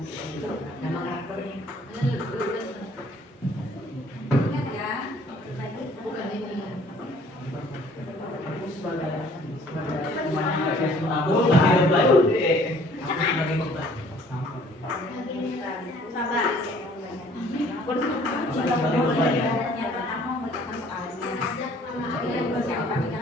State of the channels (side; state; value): both; normal; correlation 0.56